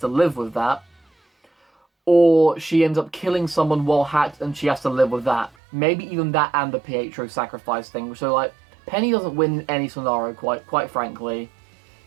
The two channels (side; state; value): left; drops out; at 5.5 s